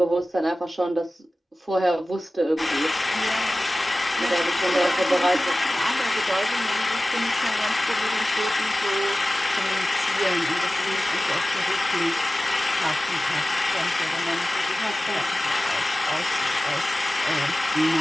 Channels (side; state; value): both; normal; correlation 0.96